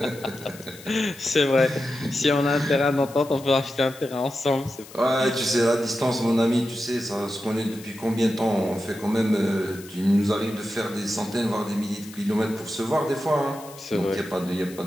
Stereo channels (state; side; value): noise; left; hiss, 19 dB below the sound